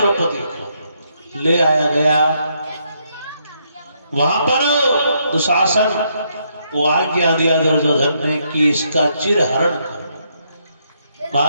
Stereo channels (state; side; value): inverted; both; correlation -0.75